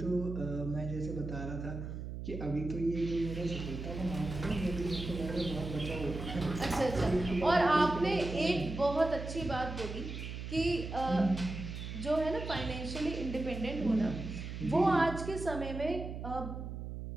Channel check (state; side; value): noise; right; hum, 7 dB below the sound